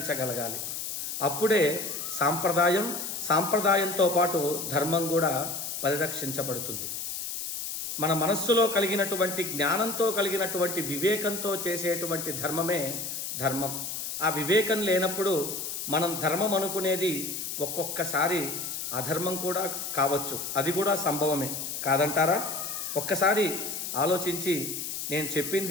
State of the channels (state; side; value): noise; left; hiss, 5 dB below the sound